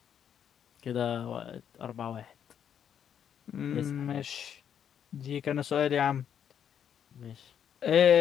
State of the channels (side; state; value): right; quieter; 8.7 dB